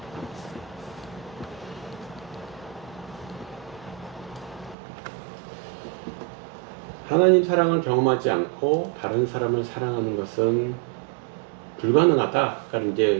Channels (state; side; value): drops out; left; at 4.8 s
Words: 하나님 사랑을 경험하지 않고 다른 사람을 사랑하는 것은 불가능하다. 그러니까